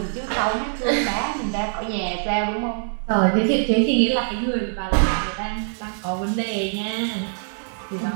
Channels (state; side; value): silent; left; digital silence